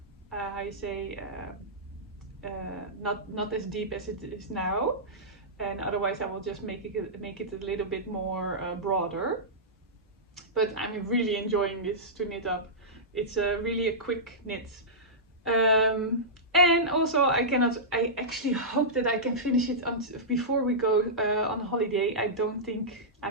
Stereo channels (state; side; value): normal; both; correlation -0.14